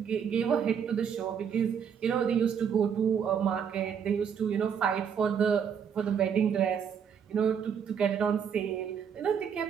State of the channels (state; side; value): quieter; left; 7.5 dB